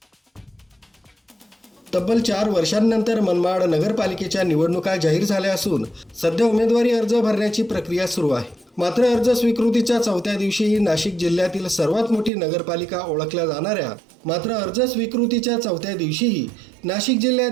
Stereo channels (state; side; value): drops out; left; at 12.3 s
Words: तब्बल 4 वर्षांनंतर मनमाड नगरपालिकेच्या निवडणुका जाहीर झाल्या असून सध्या उमेदवारी अर्ज भरण्याची प्रक्रिया सुरू आहे। मात्र अर्ज स्वीकृतीच्या 4थ्या दिवशीही नाशिक जिल्ह्यातील सर्वात मोठी नगरपालिका ओळखल्या जाणाऱ्या नाशिक